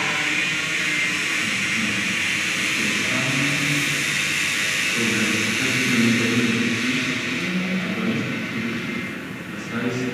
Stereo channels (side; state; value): both; identical; correlation 1.00